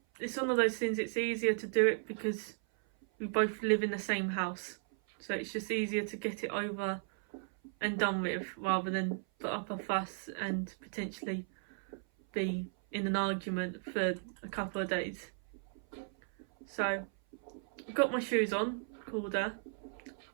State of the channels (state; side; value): silent; left; 54 dB below the other